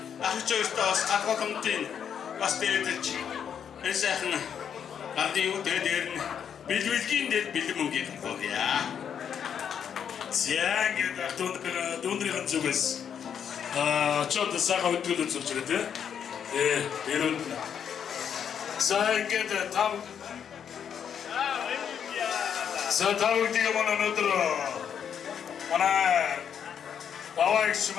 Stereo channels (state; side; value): quieter; right; 8.1 dB